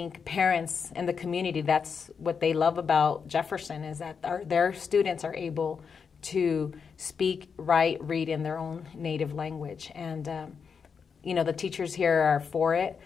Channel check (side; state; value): right; quieter; 6.1 dB